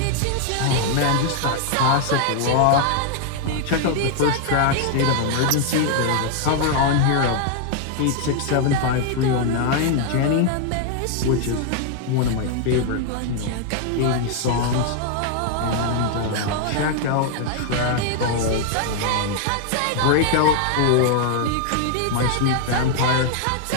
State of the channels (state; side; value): different; both; correlation 0.00